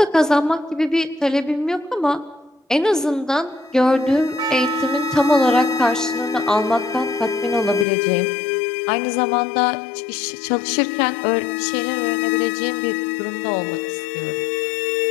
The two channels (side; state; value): right; drops out; at 7.9 s